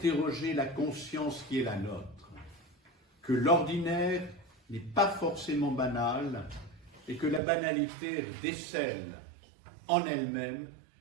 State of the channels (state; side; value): drops out; left; at 7.4 s